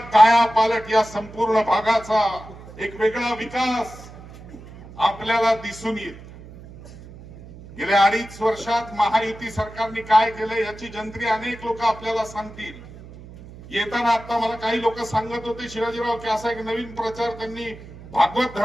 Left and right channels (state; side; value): noise; right; hum, 17 dB below the sound